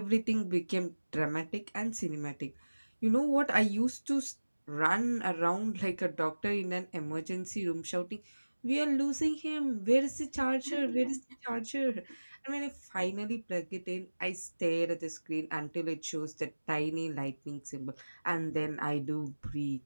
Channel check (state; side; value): inverted; both; correlation -1.00